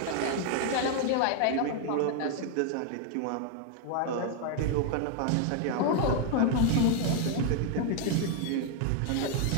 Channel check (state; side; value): different; both; correlation 0.00